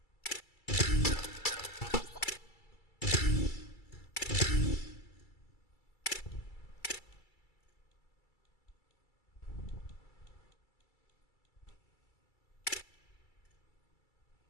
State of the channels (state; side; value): late; right; 2.3 ms